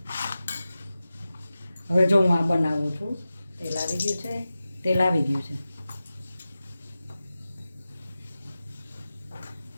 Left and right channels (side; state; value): both; inverted; correlation -0.94